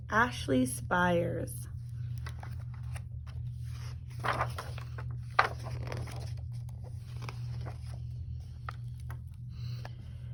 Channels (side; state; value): both; identical; correlation 1.00